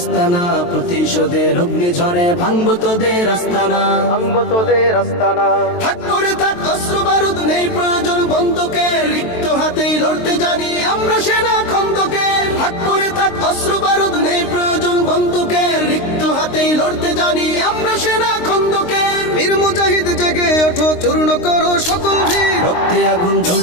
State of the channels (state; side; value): late; right; 23 ms